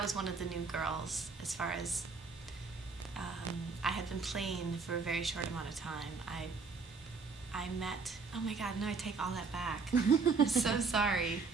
was one of the new girls as far as I had been playing for a very short amount of time. I met, oh my God, no, I take all that back. I'm so sorry.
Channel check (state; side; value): quieter; left; 4.6 dB